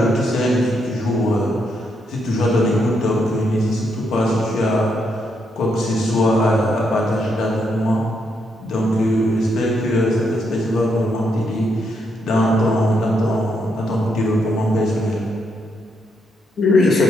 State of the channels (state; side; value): normal; both; correlation 0.78